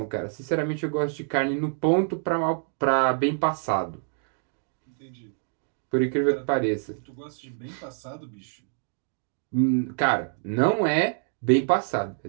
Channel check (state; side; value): silent; left; 58 dB below the other